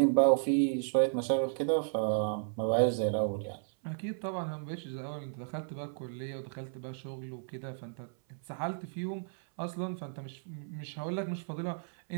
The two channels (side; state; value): left; silent; 55 dB below the other